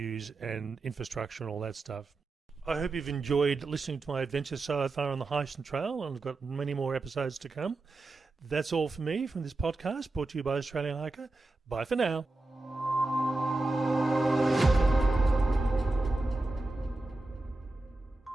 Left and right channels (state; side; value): quieter; left; 3.0 dB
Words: and infrastructure and all that stuff. I hope you've enjoyed listening to my adventure so far on the Heysen Trail, and I've got many more episodes to come. That's all for me from this podcast, brought to you by Australian Hiker. Bye for now.